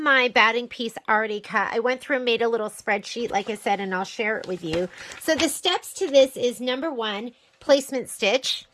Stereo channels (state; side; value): identical; both; correlation 1.00